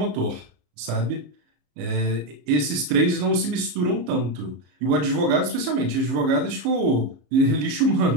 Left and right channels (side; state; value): left; late; 34 ms